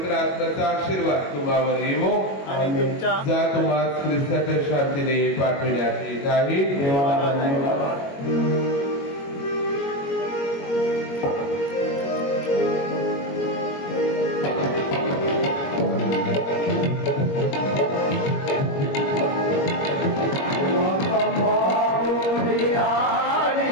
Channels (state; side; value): late; right; 21 ms